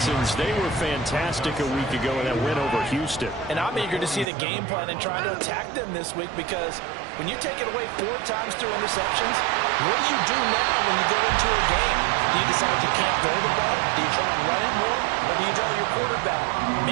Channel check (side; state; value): left; drops out; at 4.2 s